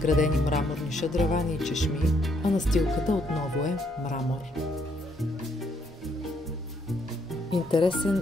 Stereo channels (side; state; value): both; normal; correlation 0.71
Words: мраморни шадравани и чешми, а настилката отново е мрамор.